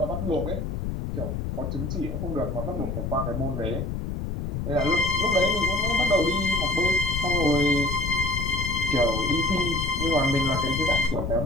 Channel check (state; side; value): noise; left; rumble, 3 dB below the sound